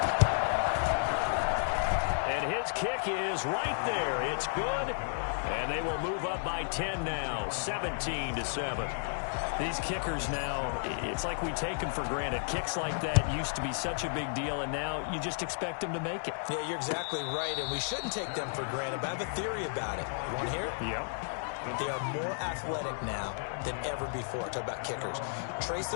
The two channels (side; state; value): right; silent; digital silence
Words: And his kick is right there. It's good. And they will move up by 10 now, 17-7. These kickers now, it's like we take them for granted. Kicks like that used to be such a big deal, and now you just expect them to make it. Yeah, you're exactly right, and we shouldn't take them for granted, but I have a theory about it. You want to hear it? Yep. They are more athletic now than ever before. Talk about kickers. Trace